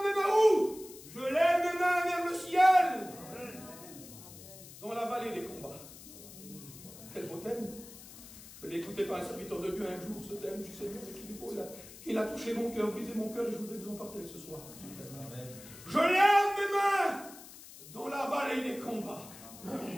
mes mains où? Je lève mes mains vers le ciel. Dans la vallée des combats. Quel beau thème. Je l'ai écouté par un serviteur de Dieu un jour, ce thème. Je suis Seigneur, il a touché mon cœur, brisé mon cœur, et je voudrais vous en partager ce soir. Amen. Je lève mes mains dans la vallée des combats.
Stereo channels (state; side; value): noise; left; hiss, 17 dB below the sound